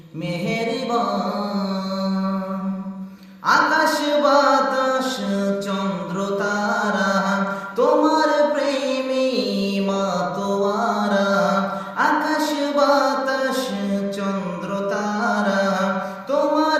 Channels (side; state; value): both; identical; correlation 1.00